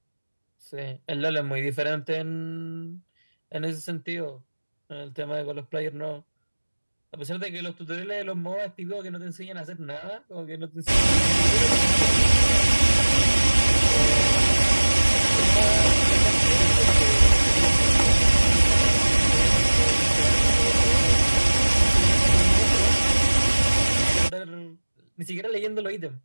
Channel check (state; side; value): inverted; both; correlation -1.00